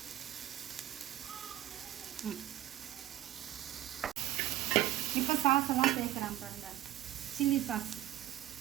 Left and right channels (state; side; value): quieter; left; 13.5 dB